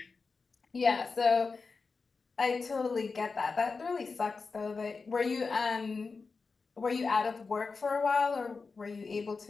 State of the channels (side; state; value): right; quieter; 4.5 dB